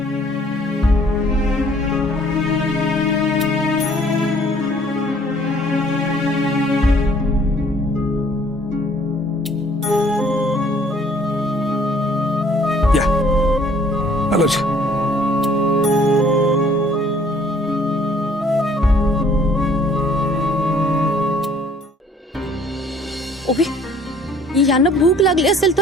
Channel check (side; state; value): both; normal; correlation 0.58